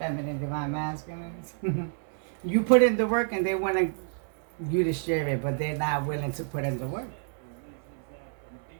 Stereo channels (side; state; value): left; silent; digital silence